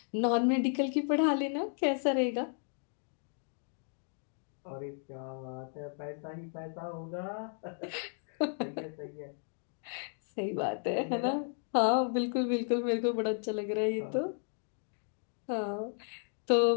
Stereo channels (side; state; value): right; silent; 55 dB below the other